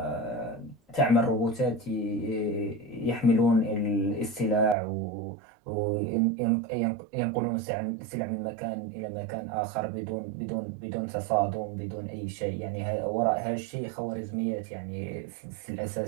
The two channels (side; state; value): left; drops out; at 4.8 s